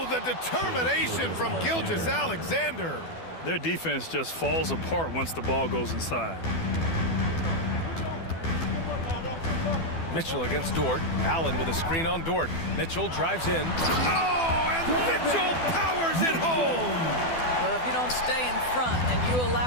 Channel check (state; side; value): late; right; 12 ms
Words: the determination from Gilgeous-Alexander. Their defense just falls apart once the ball goes inside. Mitchell against Dort. Allen with a screen on Dort. Mitchell drives in. Oh, and Mitchell powers it home. Well, if you don't stay in front and you